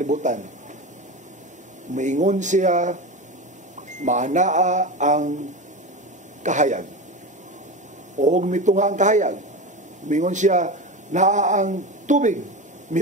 Maingon siya, maanaa ang kahayag. O mitunga ang kahayag. Maingon siya, naa ang tubig.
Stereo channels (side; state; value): both; normal; correlation 0.23